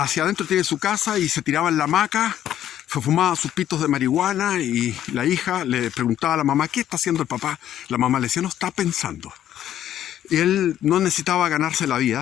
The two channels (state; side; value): quieter; right; 11.4 dB